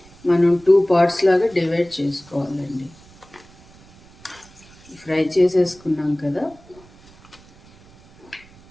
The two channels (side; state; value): right; noise; rumble, 25 dB below the sound